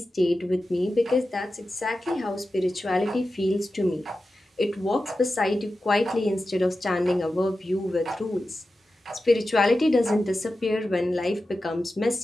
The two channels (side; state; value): both; normal; correlation 0.93